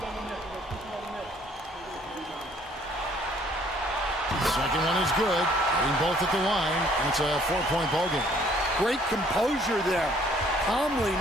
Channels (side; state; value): both; normal; correlation 0.61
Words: Second one is good. Hitting both at the line, and it's a 4-point ball game. Great composure there. Calmly